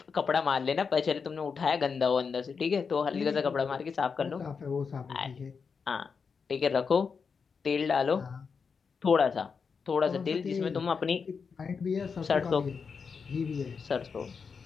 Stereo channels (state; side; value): quieter; right; 5.6 dB